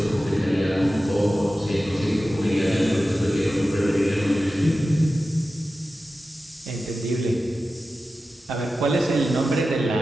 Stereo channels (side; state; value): both; normal; correlation 0.94